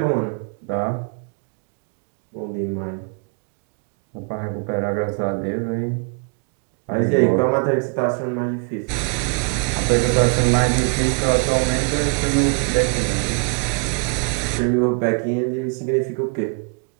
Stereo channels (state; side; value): quieter; left; 39.5 dB